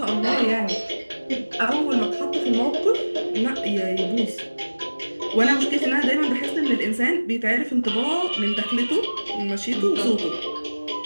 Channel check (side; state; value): both; inverted; correlation -1.00